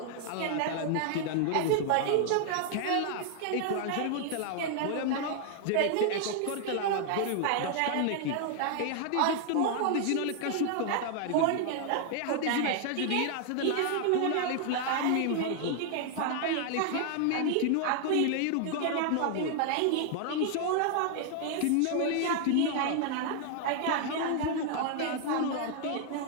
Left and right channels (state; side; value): different; both; correlation 0.00